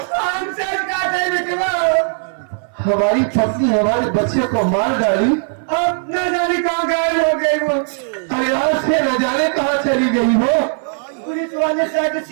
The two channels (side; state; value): left; silent; 59 dB below the other